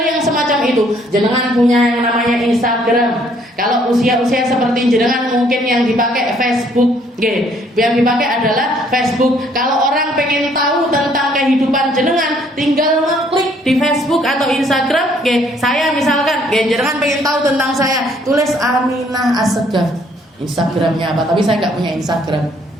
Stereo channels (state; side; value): normal; both; correlation 0.64